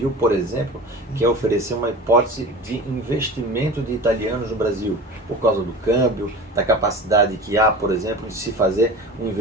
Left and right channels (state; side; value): normal; both; correlation 0.34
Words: por exemplo, quer oferecer uma hipótese de investimento de italianos no Brasil, por causa do câmbio, da capacidade que há, por exemplo, de se fazer um